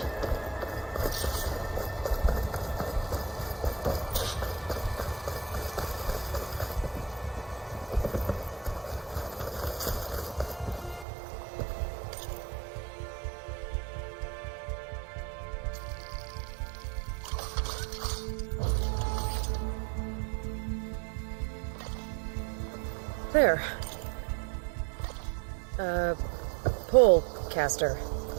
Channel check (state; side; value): drops out; left; at 11.1 s